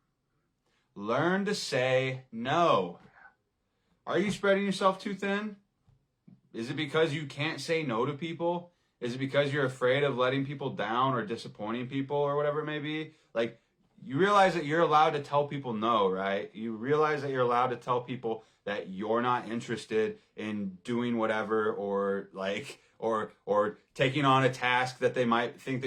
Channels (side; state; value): both; identical; correlation 1.00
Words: Learn to say no. Are you spreading yourself too thin? Is it because you can't say no to people? Is it because you're afraid of letting people down or disappointing people or whatever it may be? Like, you realize that you're allowed to tell people no, right? You realize that you're allowed to tell people that you're not interested in doing whatever, or taking on a task that they might think